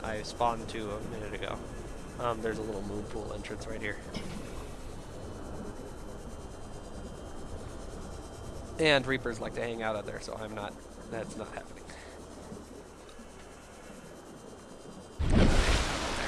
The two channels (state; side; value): identical; both; correlation 1.00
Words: I spawned to a minute ago. There's a little moon pool entrance right here. And Reapers like to hang out out there, so I'm not. That's not happening.